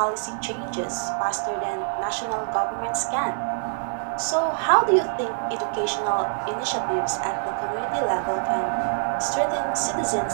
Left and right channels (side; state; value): left; silent; digital silence